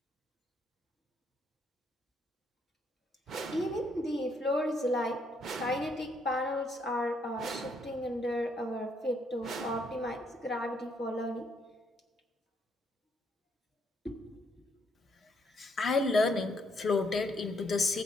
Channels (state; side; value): normal; both; correlation 0.72